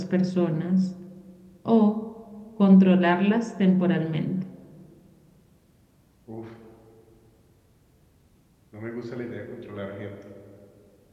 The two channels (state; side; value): identical; both; correlation 1.00